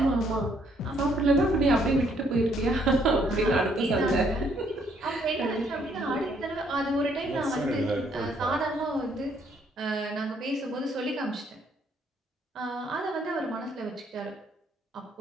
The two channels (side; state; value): both; normal; correlation 0.68